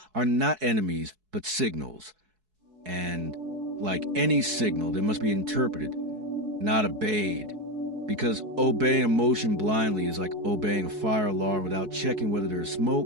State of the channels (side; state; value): left; late; 4.7 ms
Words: are not enemies, but signals. And like any signal, they must be interpreted, not obeyed. Because obeying emotion blindly is like obeying a fire alarm without checking whether there is